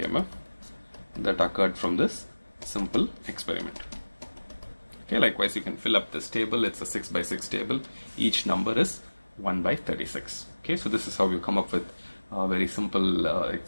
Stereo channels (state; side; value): inverted; both; correlation -1.00